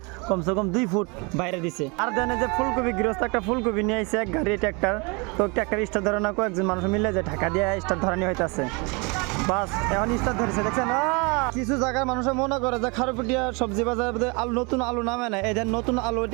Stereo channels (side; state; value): left; quieter; 29.8 dB